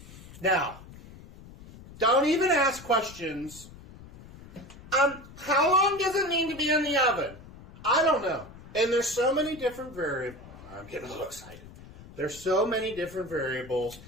Now, don't even ask questions. How long does it need to be in the oven? I don't know. And there's so many different variables. I'm getting a little excited. There's so many different variables.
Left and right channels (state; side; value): noise; left; rumble, 18 dB below the sound